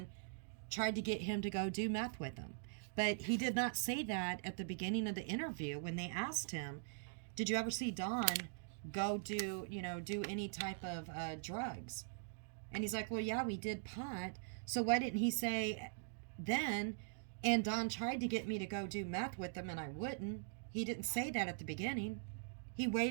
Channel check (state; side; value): silent; left; digital silence